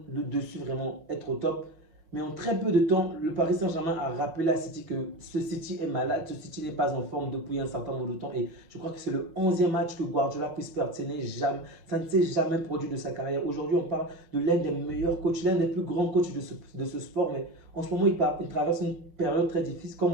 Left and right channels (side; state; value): left; late; 6.1 ms